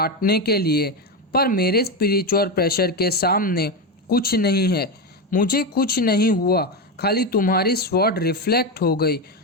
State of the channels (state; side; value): normal; both; correlation 0.13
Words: के लिए, पर मेरे स्पिरिचुअल प्रेशर के सामने कुछ नहीं है। मुझे कुछ नहीं हुआ, खाली तुम्हारी स्वॉर्ड रिफ्लेक्ट हो गई।